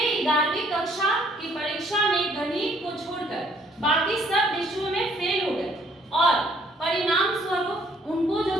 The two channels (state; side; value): normal; both; correlation 0.63